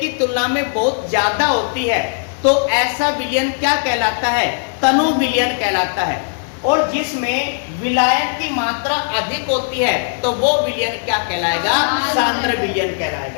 तुलना में बहुत ज्यादा होती है तो ऐसा विलयन क्या कहलाता है? तनु विलयन कहलाता है। और जिसमें विलायक की मात्रा अधिक होती है तो वो विलयन क्या कहलाएगा? सांद्र विलयन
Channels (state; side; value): silent; right; digital silence